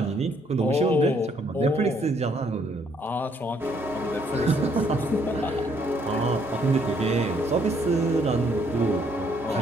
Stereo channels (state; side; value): normal; both; correlation 0.68